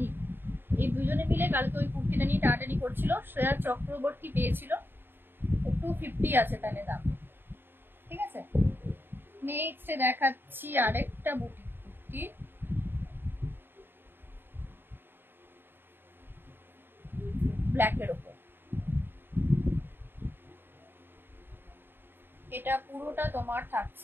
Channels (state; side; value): late; left; 0.10 ms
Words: এই দুজনে মিলে কালকে ওই কুর্তিটা নিয়ে টাটানি করছিল, শ্রেয়া চক্রবর্তী পেয়েছিল। 250 আছে তাহলে দাম, ঠিক আছে। নেক্সট দেখাচ্ছি আরেকটা বুটিক কুর্তি, ব্ল্যাকের ওপর। এটা পুরোটা তোমার